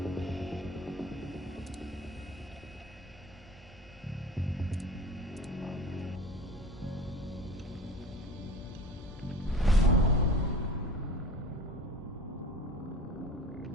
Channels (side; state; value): both; normal; correlation 0.39